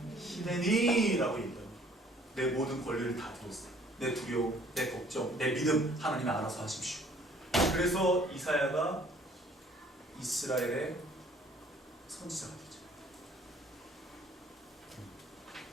히데니라고 얘기해요. 내 모든 권리를 다 드렸어요. 내 두려움, 내 걱정, 내 믿음 하나님이 알아서 하십시오. 그래서 이사야가 이스라엘의 선지자가 되죠.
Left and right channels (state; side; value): normal; both; correlation 0.57